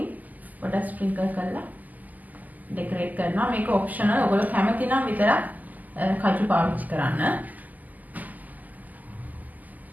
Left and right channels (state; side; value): late; left; 0.081 ms